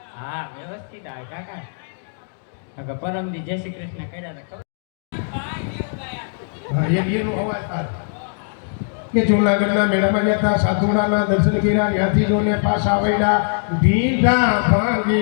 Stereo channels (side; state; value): right; silent; digital silence